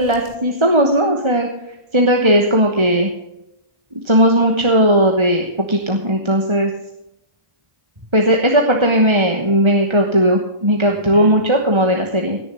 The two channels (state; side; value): late; left; 1.3 ms